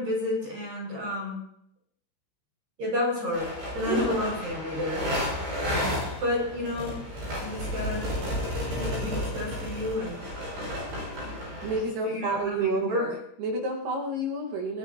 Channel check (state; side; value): late; left; 15 ms